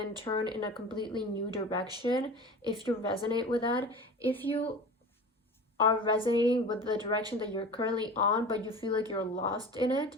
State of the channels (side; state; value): both; normal; correlation 0.35